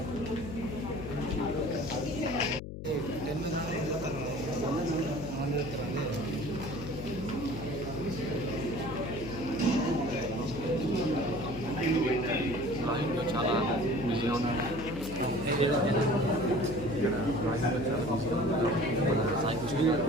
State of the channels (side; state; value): left; noise; hum, 9 dB below the sound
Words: చాలా బిజీగా ఉన్నారు.